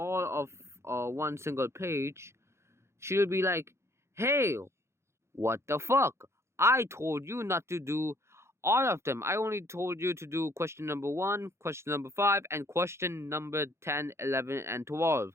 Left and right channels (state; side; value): late; left; 0.13 ms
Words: of one single page, she'll be like, "Hey, what the fuck? I told you not to do all of them. I only told you to do question number 1, question number 5, and question number 10, 11, and